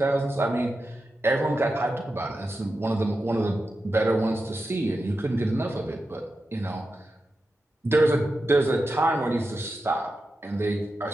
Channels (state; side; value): normal; both; correlation 0.90